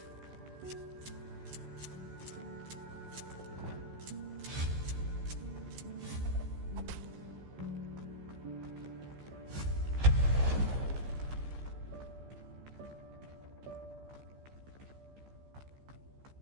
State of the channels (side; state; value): left; late; 15 ms